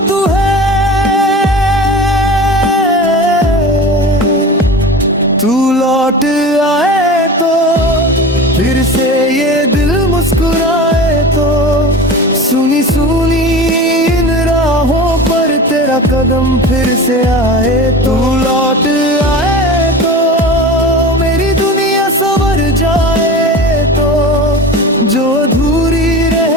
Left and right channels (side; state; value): both; normal; correlation 0.33